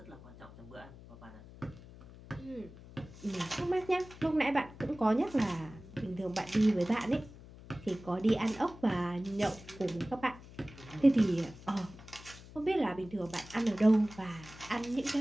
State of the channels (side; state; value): left; noise; hum, 18 dB below the sound